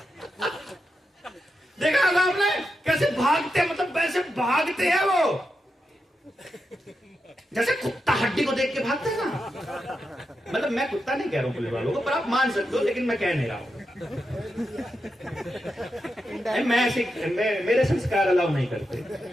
देखा होगा आपने कैसे भागते, मतलब वैसे भागते हैं वो, जैसे कुत्ता हड्डी को देख के भागता है ना। मतलब मैं कुत्ता नहीं कह रहा हूं पुलिस वालों को, पर आप मान सकते हो, लेकिन मैं कह नहीं रहा हूं। मैं ऐसे मेरे संस्कार अलाउ नहीं करते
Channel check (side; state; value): both; normal; correlation 0.87